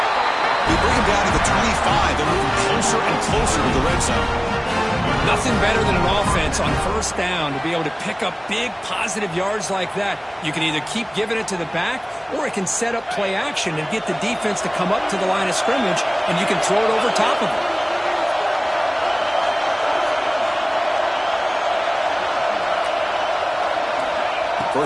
They bring him down to the 25. They're moving closer and closer to the red zone. Nothing better than an offense on first down to be able to pick up big positive yards like that. You can either keep giving it to the back, or it can set up play action and get the defense to come up to the line of scrimmage, and you can throw it over top of it.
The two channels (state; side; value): identical; both; correlation 1.00